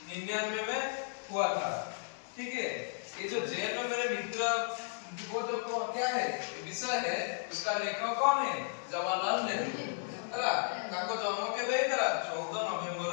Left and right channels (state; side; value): silent; right; digital silence